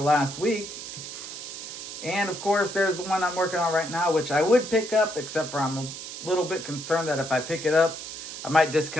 week. And of course, there's the one I'm working on right now, which I would pick up, except for I'm a little bit concerned that if I pick it up, I might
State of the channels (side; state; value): right; noise; hiss, 9 dB below the sound